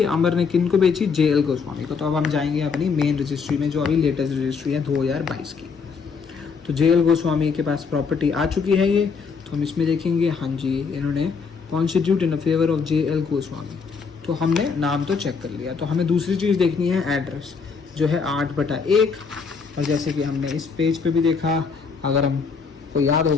अमर ने किन को बेची? JL गोस्वामी को। तो अब हम जाएंगे अपनी मेन रजिस्ट्री में, जो अभी लेटेस्ट रजिस्ट्री है 2022 की। तो JL गोस्वामी के पास प्रॉपर्टी आ चुकी है ये, तो हम इसमें देखेंगे, हाँ जी इन्होंने constitute in favour of JL Goswami. तो हमने नाम तो चेक कर लिया, तो हमें दूसरी चीज़ देखनी है एड्रेस, जो है 8/1। और जैसे कि हमने इस पेज पे भी देखा, अगर हमको याद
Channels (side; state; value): right; quieter; 5.4 dB